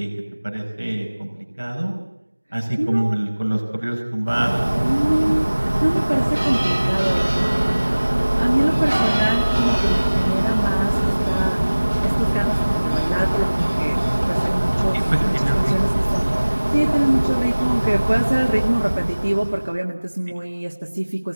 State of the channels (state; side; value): inverted; both; correlation -1.00